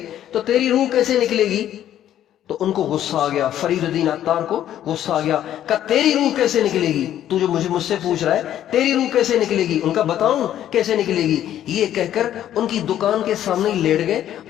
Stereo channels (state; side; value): quieter; right; 11.4 dB